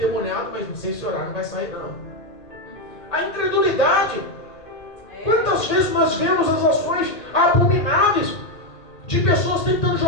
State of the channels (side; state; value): right; late; 1.9 ms